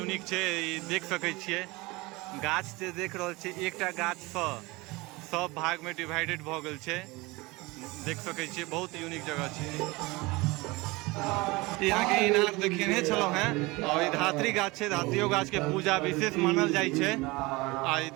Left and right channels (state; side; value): quieter; left; 23.2 dB